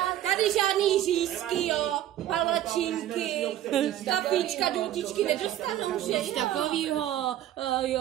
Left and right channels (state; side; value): quieter; left; 12.4 dB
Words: tady žádný řízky, jo, palačinky, kapíčka, důtičky nedostanou, že Nic takovýho,